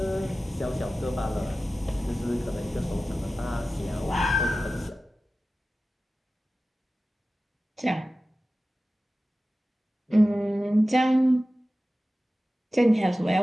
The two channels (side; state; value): both; normal; correlation 0.95